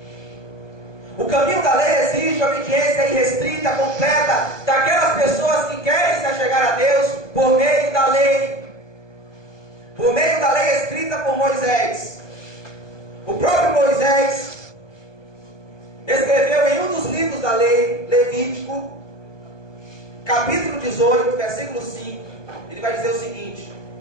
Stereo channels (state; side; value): late; right; 1.2 ms